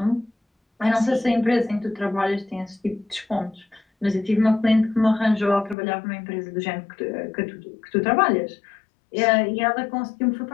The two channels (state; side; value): drops out; right; at 5.8 s